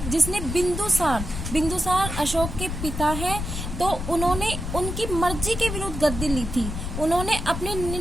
जिसने बिंदुसार अशोक के पिता है। तो उन्होंने उनकी मर्जी के विरुद्ध गद्दी ली थी। उन्होंने अपने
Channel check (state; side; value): noise; left; rumble, 5 dB below the sound